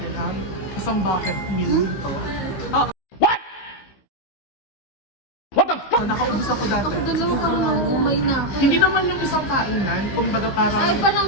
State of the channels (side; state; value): right; late; 16 ms